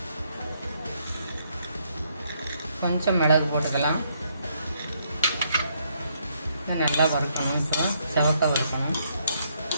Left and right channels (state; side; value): inverted; both; correlation -0.73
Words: கொஞ்சம் மிளகு போட்டுக்கலாம். நல்லா வறுக்கணும். இப்போ செவக்க வறுக்கணும்.